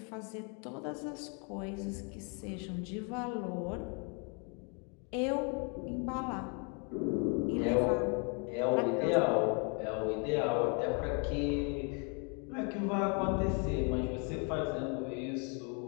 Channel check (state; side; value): quieter; right; 36.6 dB